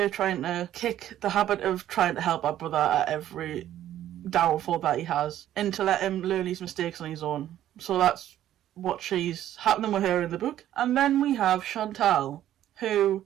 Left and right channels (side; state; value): left; quieter; 12.2 dB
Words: trying to kick the habit of trying to help our brother at every downfall that he has and to let him learn his mistakes on his own. So that's what she's happening with her in the book. And then we have Chantal, who